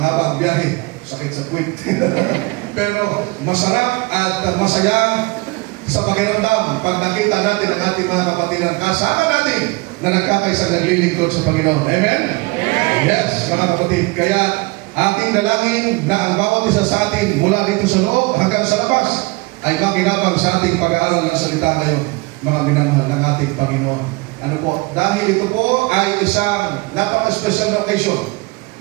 ang biyahe, sakit sa puwit. Pero masarap at masaya sa pakiramdam pag nakita natin ang ating mga kapatiran kasama natin na nagkakaisang naglilingkod sa Panginoon. Amen? Yes, mga kapatid. Kaya ating dalangin na ang bawat isa sa atin mula dito sa loob hanggang sa labas ay makinabang sa ating pag-aaral ng salita ngayon, mga minamahal ng ating Panginoon. Ano po? Dahil ito po ay isang napaka-special na occasion.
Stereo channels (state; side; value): quieter; left; 24.6 dB